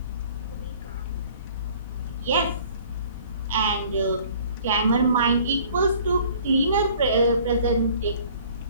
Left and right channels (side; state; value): both; inverted; correlation -0.53